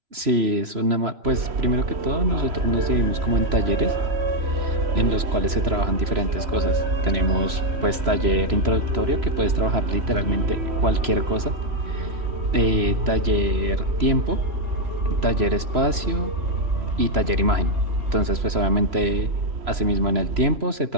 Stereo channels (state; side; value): late; left; 3.0 ms